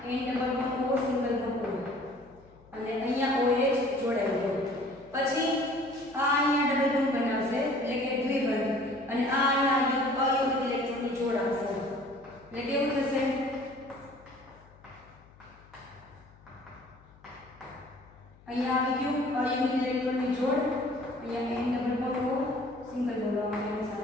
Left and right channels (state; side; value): noise; left; hum, 26 dB below the sound